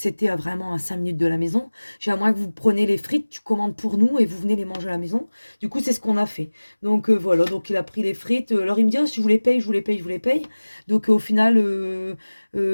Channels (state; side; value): inverted; both; correlation -1.00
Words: vraiment à 5 minutes de la maison, j'ai à moins que vous preniez les frites, tu commandes pour nous et vous venez les manger à la maison. Du coup, c'est ce qu'on a fait. Donc, voilà, donc il a pris les frites. Alors, il me dit, oh, si je vous les paye, je vous les paye, je vous les paye. Donc, au final,